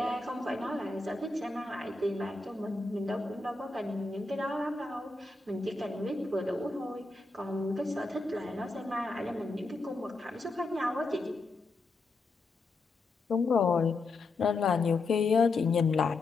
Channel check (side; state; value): right; quieter; 3.5 dB